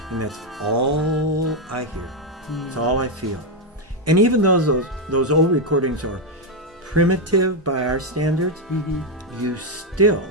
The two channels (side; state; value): both; normal; correlation 0.03